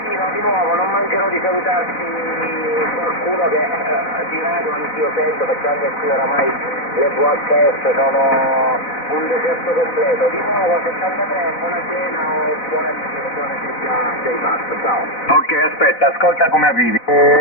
di nuovo, non mancherò di salutarti qualcuno che di radio anch'io sento, perché anche qui oramai le VHF sono un deserto completo. Di nuovo 73, buona cena o buona se già sei fatto, ciao. Ok, aspetta, ascolta come arrivi.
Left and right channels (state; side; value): late; right; 4.0 ms